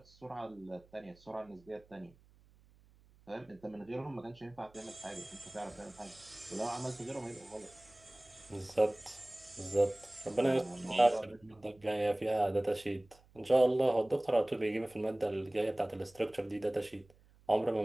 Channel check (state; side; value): noise; right; hum, 28 dB below the sound